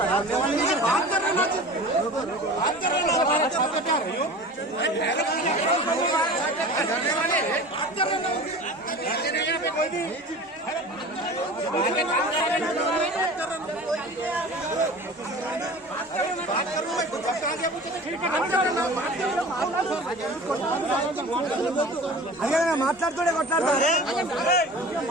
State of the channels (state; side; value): normal; both; correlation 0.38